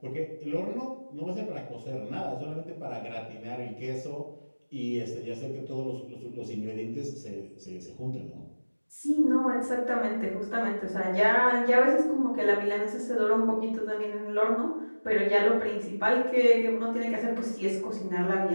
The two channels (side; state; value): both; inverted; correlation -1.00